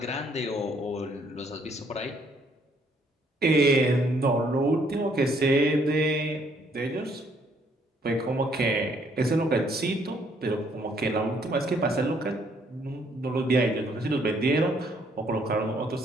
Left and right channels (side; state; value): both; normal; correlation 0.66